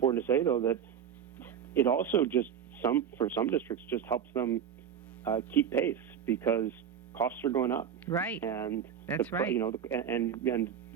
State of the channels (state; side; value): quieter; left; 8.4 dB